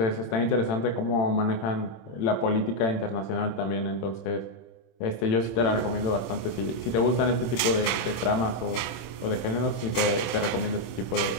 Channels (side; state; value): right; late; 26 ms